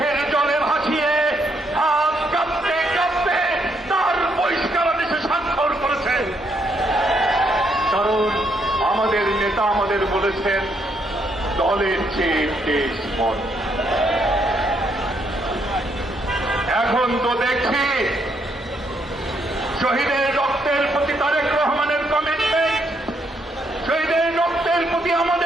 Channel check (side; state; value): both; normal; correlation 0.74